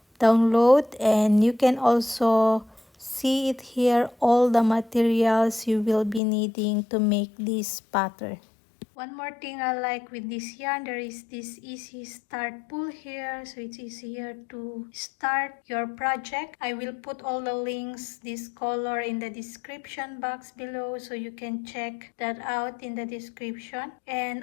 download, and you can also see it here, all the materials you will be needing to make this pattern. One more thing I like with this yarn, there is this easy start pull here, so it's easier to start your project. I will put all the links, this color, in the description box below, so you can check that out in the description. And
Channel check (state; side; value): drops out; right; at 6.2 s